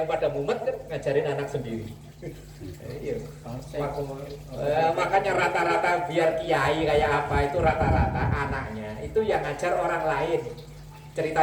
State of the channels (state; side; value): identical; both; correlation 1.00